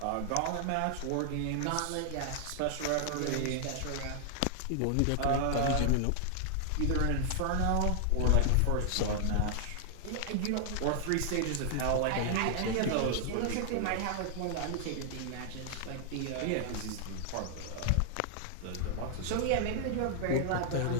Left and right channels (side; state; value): both; different; correlation 0.00